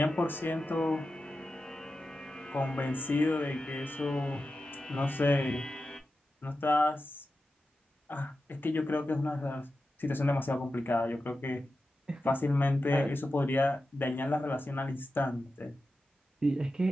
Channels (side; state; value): both; normal; correlation 0.91